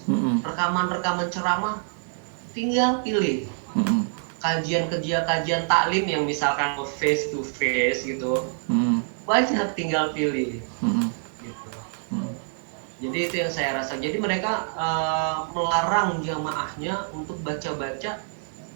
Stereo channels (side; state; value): left; silent; 61 dB below the other